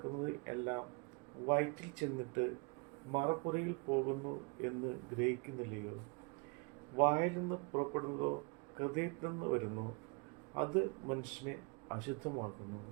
എല്ലാം വയറ്റിൽ ചെന്നിട്ട് മറപ്പുറയിൽ പോകുന്നു എന്ന് ഗ്രഹിക്കുന്നില്ലയോ? വായിൽ നിന്ന് പുറപ്പെടുന്നതോ ഹൃദയത്തിൽ നിന്ന് വരുന്നു, അത് മനുഷ്യനെ അശുദ്ധമാക്കുന്നു.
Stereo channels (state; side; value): quieter; left; 31.9 dB